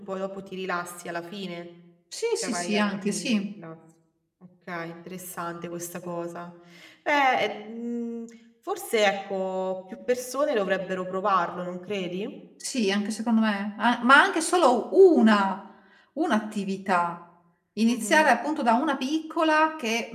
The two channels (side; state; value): both; identical; correlation 1.00